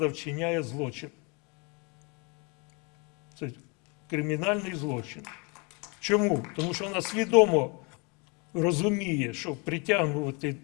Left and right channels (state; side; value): quieter; right; 31.3 dB